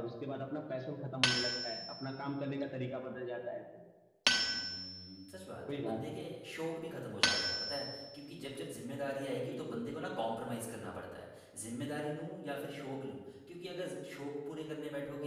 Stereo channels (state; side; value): identical; both; correlation 1.00